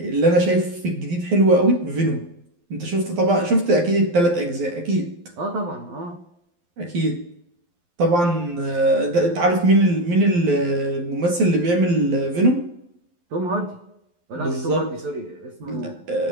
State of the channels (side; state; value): left; late; 12 ms